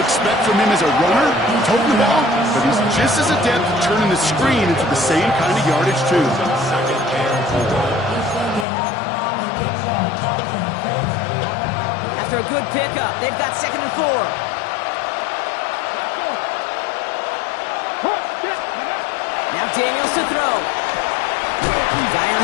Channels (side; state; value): right; drops out; at 8.7 s